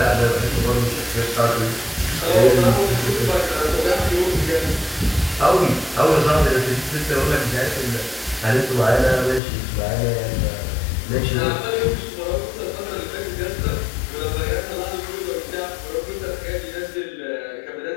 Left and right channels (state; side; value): drops out; right; at 9.4 s